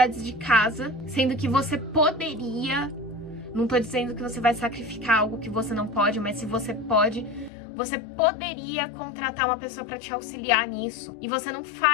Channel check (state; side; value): drops out; right; at 7.5 s